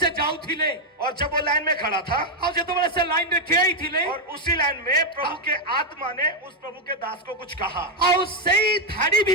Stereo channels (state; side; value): normal; both; correlation 0.03